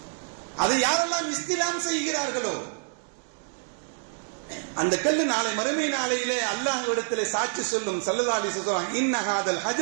அதை யாரெல்லாம் இஸ்திலாம் செய்கிறார்களோ அந்த கல்லு நாளை மறுமை நாளையிலே அல்லாஹ்விடத்திலே சாட்சி சொல்லும். ஸல்லல்லாஹு அலைஹி வஸல்லம் இன்ன ஹாதல்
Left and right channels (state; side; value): silent; left; 60 dB below the other